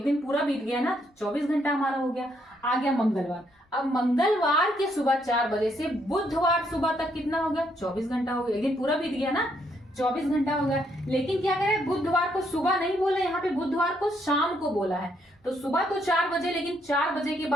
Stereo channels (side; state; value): both; normal; correlation 0.73